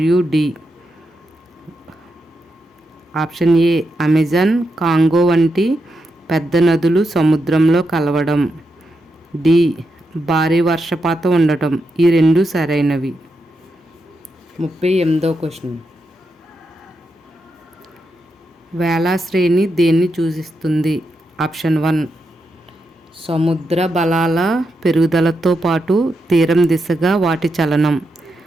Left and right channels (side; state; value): both; normal; correlation 0.85